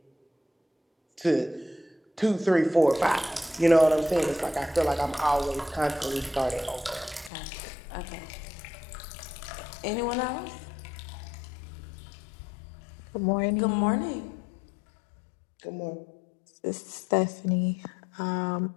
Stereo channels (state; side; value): drops out; right; at 7.3 s